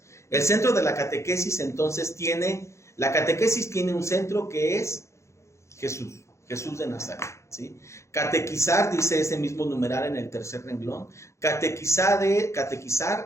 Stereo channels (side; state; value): right; late; 0.14 ms